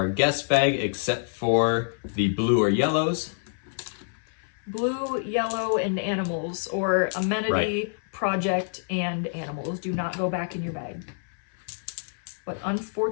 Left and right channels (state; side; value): silent; right; 58 dB below the other